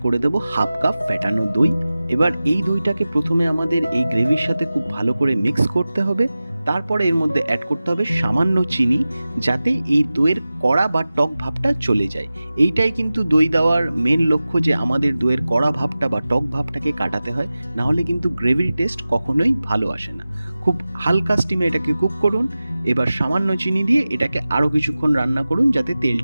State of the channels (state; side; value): inverted; both; correlation -0.96